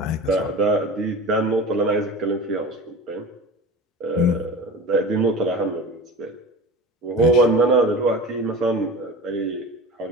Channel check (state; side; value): normal; both; correlation 0.33